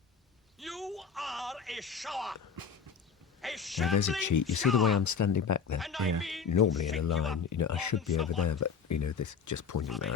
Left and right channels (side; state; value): right; quieter; 6.0 dB